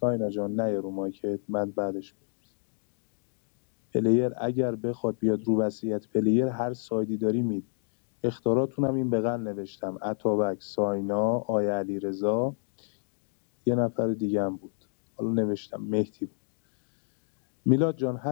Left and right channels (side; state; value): right; silent; 58 dB below the other